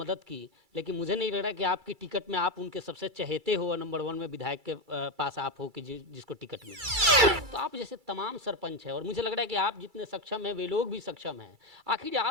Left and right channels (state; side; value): late; left; 2.3 ms